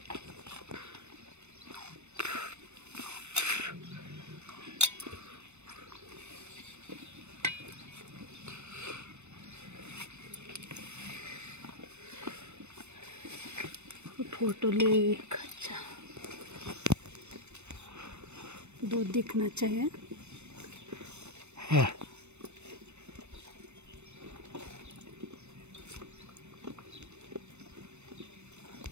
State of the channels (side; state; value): left; late; 0.82 ms